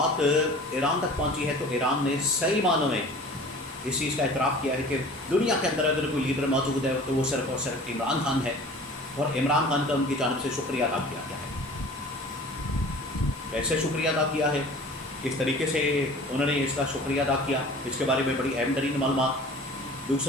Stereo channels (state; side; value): normal; both; correlation 0.43